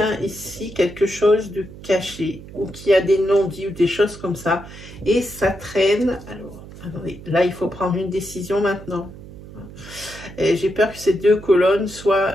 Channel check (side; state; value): right; noise; hum, 16 dB below the sound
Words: ici quelque chose de caché ou qui a des non-dits ou des choses comme ça. Et ça traîne. Alors, attendez, là, il faut prendre une décision maintenant. J'ai peur que ces deux colonnes soient